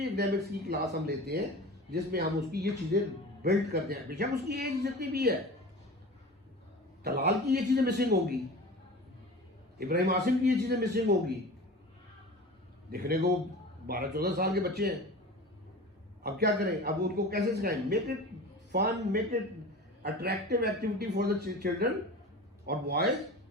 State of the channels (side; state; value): both; normal; correlation 0.35